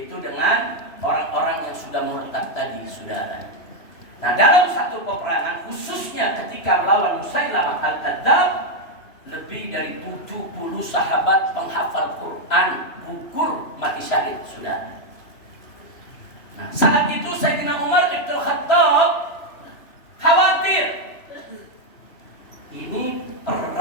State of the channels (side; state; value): right; late; 3.0 ms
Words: dengan orang-orang yang sudah murtad tadi, saudara. Nah dalam satu peperangan, khususnya ketika melawan Musailamah al-Kadzdzab, lebih dari 70 sahabat penghafal Quran gugur mati syahid, saudara. Nah, saat itu Sayyidina Umar Ibn Khattab khawatir. Ini